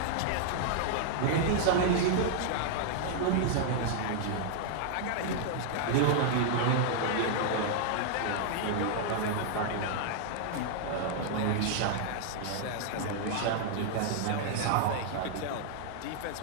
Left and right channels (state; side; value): different; both; correlation -0.01